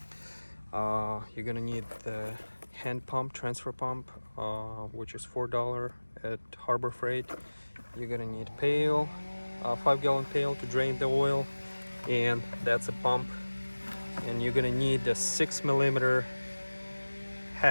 You're gonna need the hand pump, transfer pump, which is $4 at Harbor Freight. You're gonna need pail, 5-gallon pail to drain the oil, and that's a pump. And you're gonna need the 6mm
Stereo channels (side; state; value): both; inverted; correlation -1.00